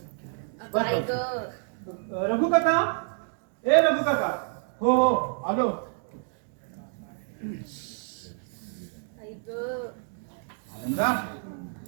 काय ग? रघु काका, ए रघु काका. हो हो आलो. आनंदा,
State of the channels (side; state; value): left; silent; 59 dB below the other